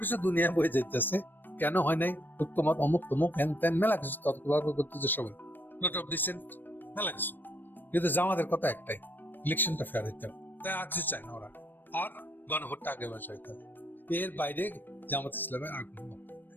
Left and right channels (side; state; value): right; late; 0.093 ms